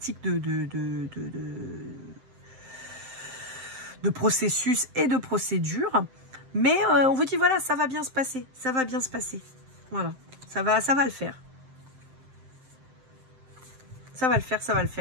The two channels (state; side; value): late; left; 7.7 ms